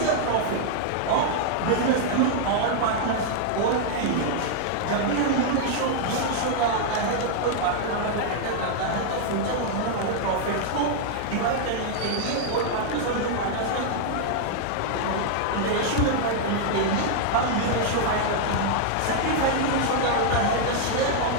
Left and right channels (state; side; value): different; both; correlation -0.01